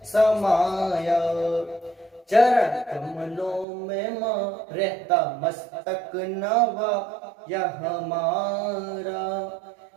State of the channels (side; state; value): left; drops out; at 3.7 s